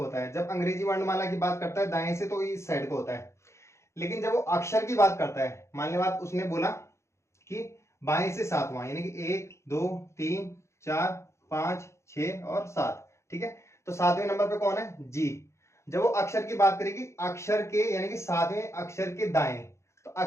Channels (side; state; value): right; late; 0.14 ms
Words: होता है, जब अंग्रेजी वर्णमाला की बात करता है दाएं से तो इस साइड को होता है। लेकिन जब वो अक्षर की बात करता है, मान ली बात उसने बोला कि बाएं से 7वां, यानी कि 1 2 3 4 5 6 और 7, ठीक है। तो 7वें नंबर पे कौन है, जी। जब वो अक्षर की बात करेगी, अक्षर के यानी कि 7वें अक्षर के दाएं, तो